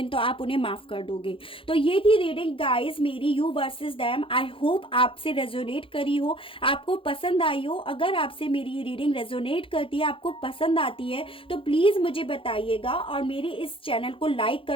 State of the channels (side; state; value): right; late; 0.26 ms